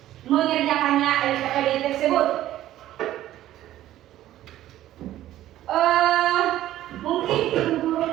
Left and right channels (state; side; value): quieter; left; 13.6 dB